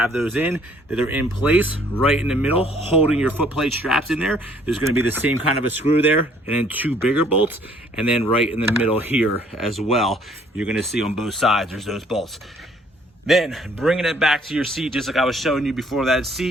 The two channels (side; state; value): both; normal; correlation 0.61